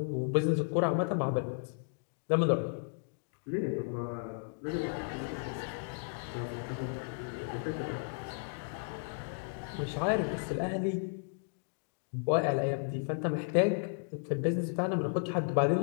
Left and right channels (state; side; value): silent; right; digital silence